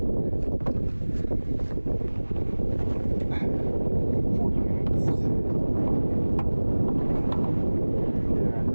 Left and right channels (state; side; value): inverted; both; correlation -1.00